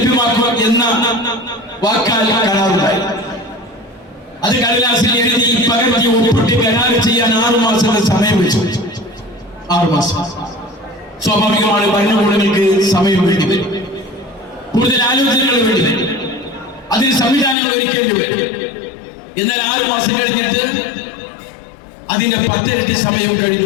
എന്ന വാക്കാൽ കരാറുണ്ടായി. അത് കടലാസിൽ എഴുതി പകർത്തി ഒപ്പിട്ട് കരാർ ചെയ്യാൻ 6 മാസത്തെ സമയം വെച്ചു. 6 മാസം. സ്വാഭാവികമാണ്, ഭരണകൂടങ്ങൾക്ക് സമയം വേണ്ടി വരും, കൂടുതൽ ആലോചനകൾ വേണ്ടി വരും, അതിന് സംവിധാനങ്ങൾ ഒരുക്കേണ്ടി വരും. എന്നാൽ 6 മാസം കഴിഞ്ഞിട്ട് അതിന്റെ 10 ഇരട്ടി സമയം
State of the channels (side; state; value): right; drops out; at 17.6 s